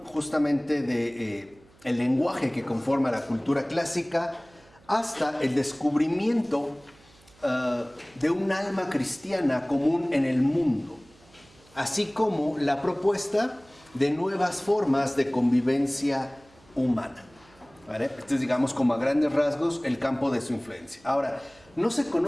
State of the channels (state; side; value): noise; right; hum, 28 dB below the sound